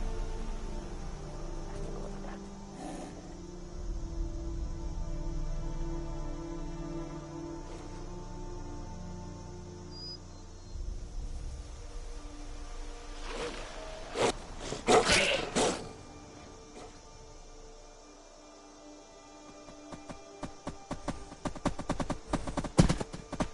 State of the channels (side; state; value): both; identical; correlation 1.00